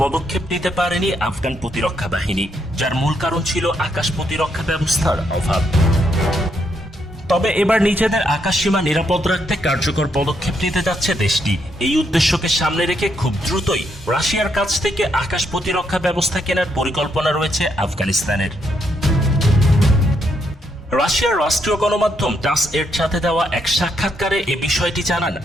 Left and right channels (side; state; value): both; normal; correlation 0.76